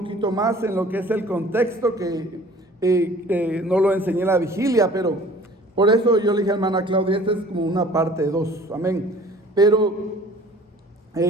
más en lo que es el contexto, que no lo enseñé en la vigilia, pero por eso yo le dije a hermana Claudia, esta es como una parte 2, amén. Pero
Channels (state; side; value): normal; both; correlation 0.49